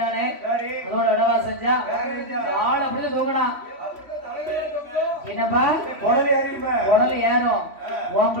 அதோட இடவா செஞ்சா ஆள் அப்படி தூங்கினா என்னப்பா உடல் ஏறும் உன்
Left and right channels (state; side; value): late; left; 3.1 ms